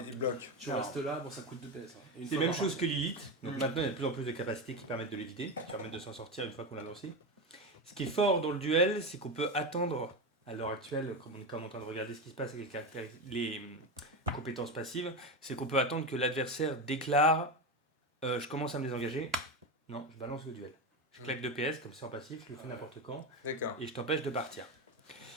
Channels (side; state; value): both; normal; correlation 0.17